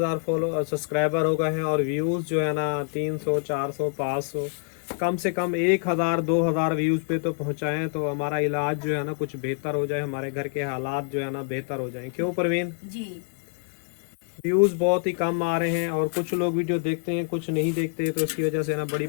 सब्सक्राइबर हो गए हैं और व्यूज़ जो है ना 300 400 500, कम से कम 1,000 2,000 व्यूज़ पे तो पहुँचाएँ तो हमारा इलाज जो है ना कुछ बेहतर हो जाए, हमारे घर के हालात जो है ना बेहतर हो जाएँ। क्यों परवीन जी? व्यूज़ बहुत ही कम आ रहे हैं और कुछ लोग वीडियो देखते हैं कुछ नहीं देखते, तो इसकी वजह से ना बड़ी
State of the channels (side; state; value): right; quieter; 39.1 dB